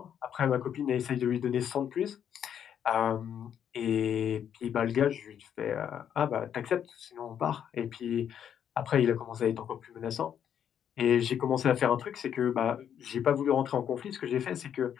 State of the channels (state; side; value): quieter; right; 9.0 dB